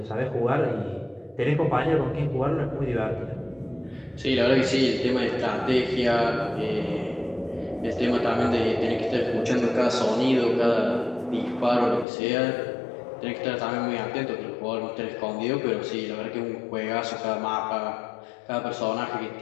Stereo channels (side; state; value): right; drops out; at 12.1 s